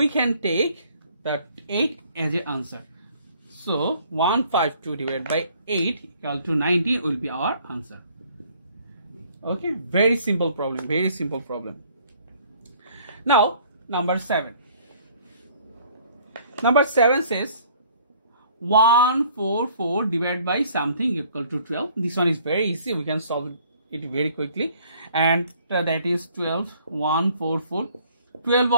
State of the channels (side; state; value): both; inverted; correlation -0.58